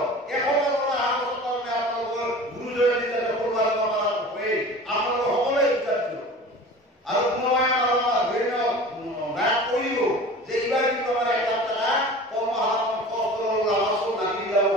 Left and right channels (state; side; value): normal; both; correlation 0.38